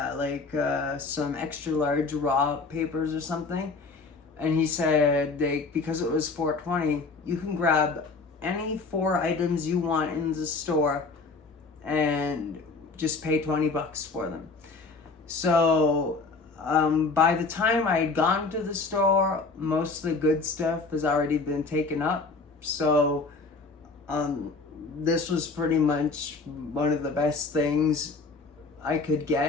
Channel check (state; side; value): quieter; right; 4.0 dB